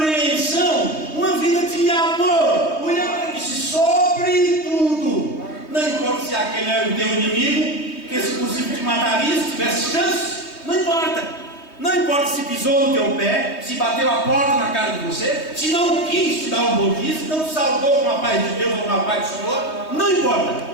uma vida de amor. O William disse: sobretudo, não importa se aquele é o teu inimigo, que se possível te mataria se tivesse chance, não importa. Não importa se pisou no teu pé, se bateu a porta na cara de você, se não quis te dar um bom dia, se não te saudou com a paz de Deus ou com a paz do Senhor, não importa.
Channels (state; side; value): late; right; 3.2 ms